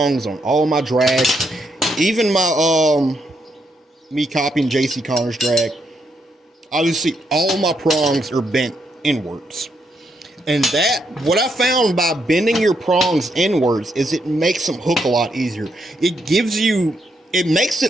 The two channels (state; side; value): normal; both; correlation 0.78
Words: on all my drags, even my me copying JC Connor's drag, obviously all my prongs are bent inwards. And that, what I found by bending your prongs inwards, is it makes them hook a lot easier. It makes